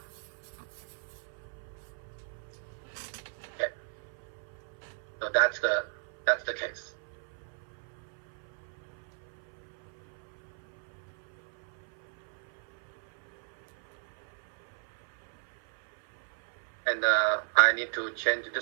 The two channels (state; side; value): silent; left; 54 dB below the other